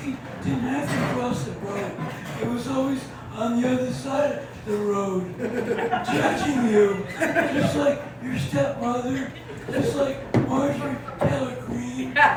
didn't have to cross the road. It was always on the other side of the road, judging you, just like your stepmother, just like Marjorie Taylor Greene,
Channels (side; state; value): both; identical; correlation 1.00